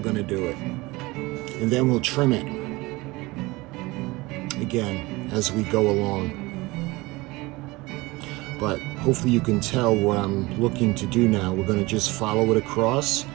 to do it. And then we'll trim it again as we go along. But hopefully you can tell what I'm looking to do now. We're going to just follow it across.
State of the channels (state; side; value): quieter; left; 21.9 dB